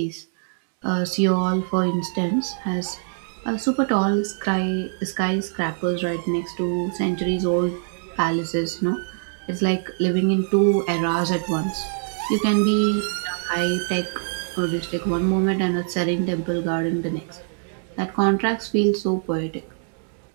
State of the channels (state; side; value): silent; left; digital silence